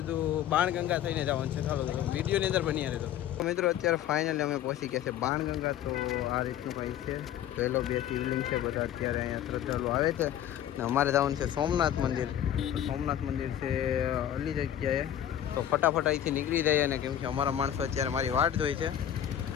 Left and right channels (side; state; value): right; quieter; 10.9 dB